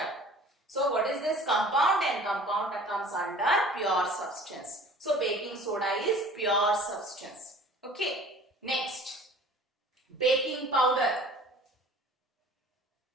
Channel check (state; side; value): normal; both; correlation 0.47